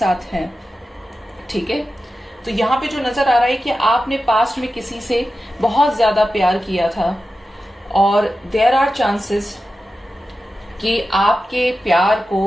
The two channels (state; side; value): normal; both; correlation 0.92